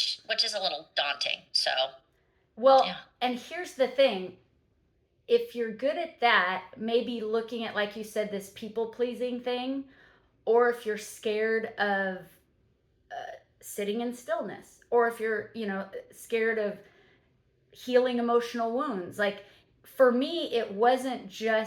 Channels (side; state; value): both; identical; correlation 1.00